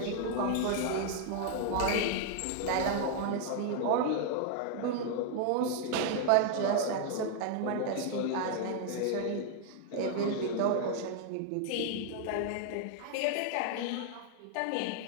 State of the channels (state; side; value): different; both; correlation 0.00